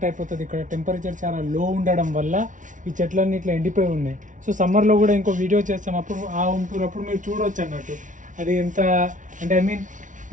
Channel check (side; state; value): left; late; 0.37 ms